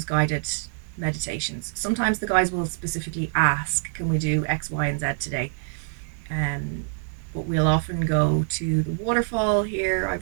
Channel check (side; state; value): left; silent; 62 dB below the other